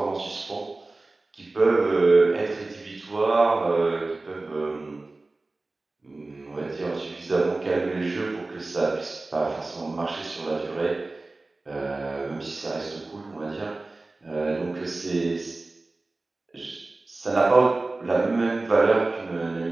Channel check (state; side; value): quieter; left; 3.2 dB